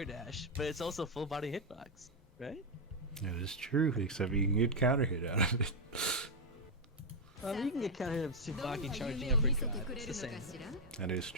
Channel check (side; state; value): both; normal; correlation 0.01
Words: dash, but it's also full body hitbox, right? That is true, except you can get counter hit out of it. You can get counter hit of Tsubaki charging uppercut. It's the same. That is